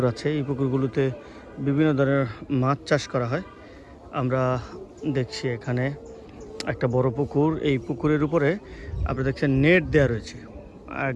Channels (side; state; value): both; identical; correlation 1.00